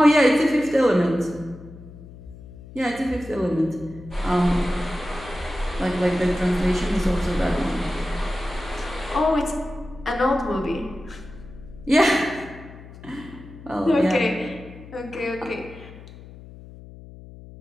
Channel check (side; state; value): left; noise; hum, 17 dB below the sound